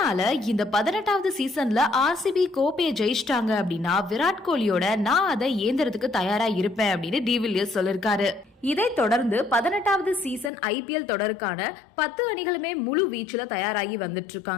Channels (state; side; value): drops out; right; at 10.5 s